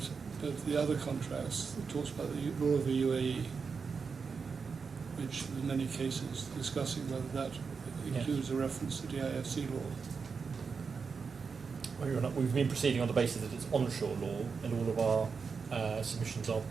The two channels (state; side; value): quieter; left; 5.4 dB